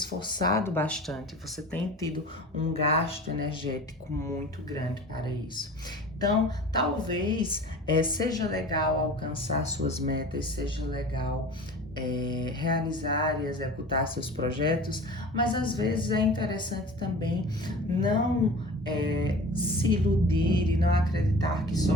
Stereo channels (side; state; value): both; normal; correlation 0.39